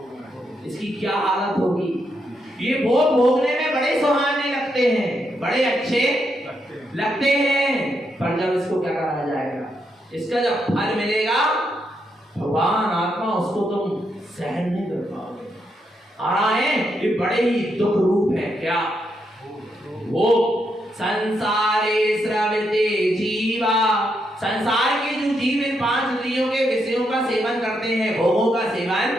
इसकी क्या हालत होगी। ये भोग भोगने में बड़े सुहाने लगते हैं, बड़े अच्छे लगते हैं, पर जब इसको क्या करा जाएगा, इसका जब फल मिलेगा भगवान आत्मा उसको तुम सहन नहीं कर पाओगे। आ रहा है, ये बड़े ही दुख रूप है। क्या? वो संसारे स्रवते जीवा, संसार के जो जीव इन 5 इंद्रियों के विषयों का सेवन करते हैं, भोगों का सेवन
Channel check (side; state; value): both; normal; correlation 0.80